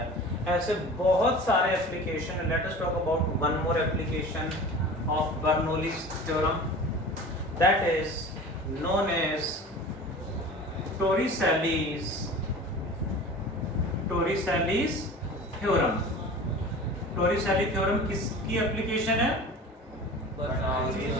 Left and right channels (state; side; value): normal; both; correlation 0.38